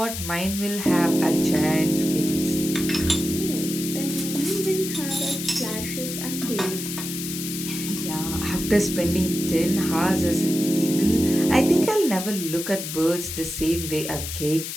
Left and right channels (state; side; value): noise; left; hiss, 6 dB below the sound